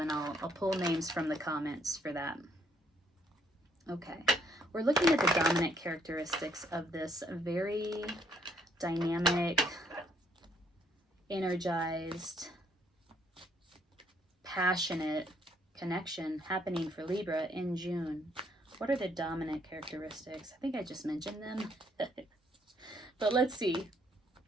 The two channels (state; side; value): normal; both; correlation 0.68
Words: I'll pull names from the comments for that. Okay, we're looking at the dominant characteristics of this very dynamic, energized, passionate connection happening for Libra in June. What are the dominant characteristics? I think I just mentioned them. But let's see.